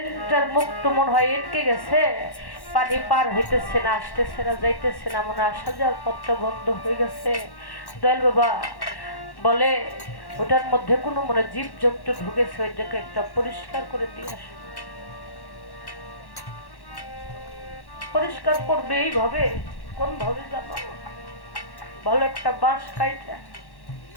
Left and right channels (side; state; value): right; late; 1.1 ms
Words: মুখ তো মনে হয় আটকে গেছে, পানি পার হইতেছে না, আসতেছে না, যাইতেছে না, মনে আসা যাওয়ার পথটা বন্ধ হয়ে গেছে। দয়াল বাবা বলে, ওটার মধ্যে কোনো মনে জীব জন্তু ঢুকেছে, ওইটাকে একটা পরিষ্কার করে দিয়ে আসো। পরিষ্কার করবে এইভাবে, কোন ভাবে জানো? ভালো একটা বাঁশ কাইটা